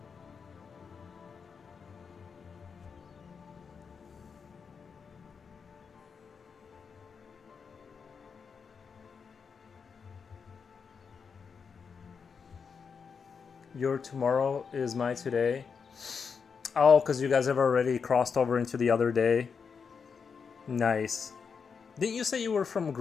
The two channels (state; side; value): quieter; right; 5.9 dB